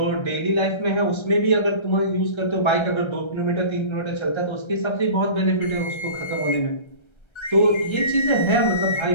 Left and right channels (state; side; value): late; right; 1.3 ms